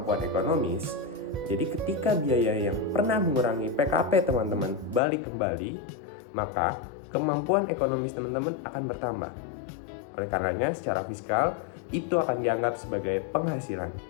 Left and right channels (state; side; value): drops out; right; at 5.0 s